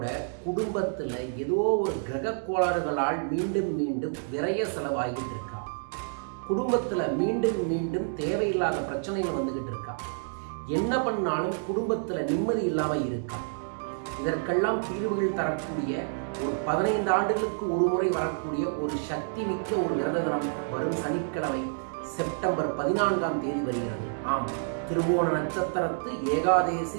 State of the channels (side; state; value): left; silent; digital silence